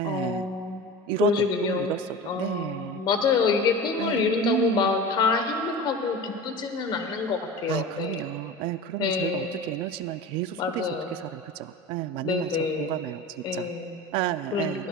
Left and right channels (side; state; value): both; normal; correlation 0.32